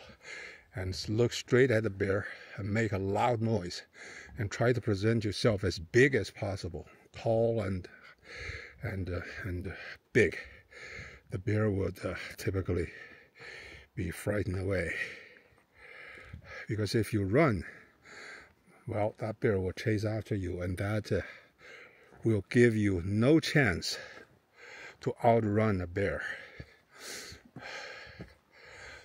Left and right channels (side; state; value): both; identical; correlation 1.00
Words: and look straight at the bear and make a loud noise, and try to present yourself as big as possible, tall and big. The bear would typically be frightened away, because if you run, well, that bear will chase after you, and that will give you no chance to outrun a bear.